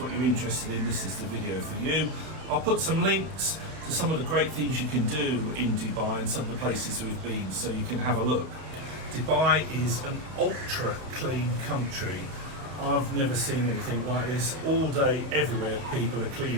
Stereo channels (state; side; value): late; left; 31 ms